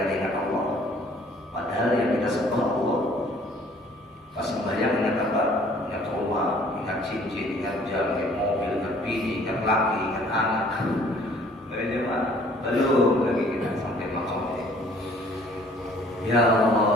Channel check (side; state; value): both; normal; correlation 0.56